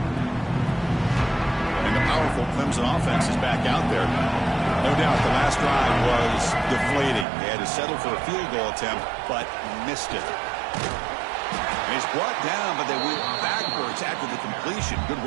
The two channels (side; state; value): left; drops out; at 7.2 s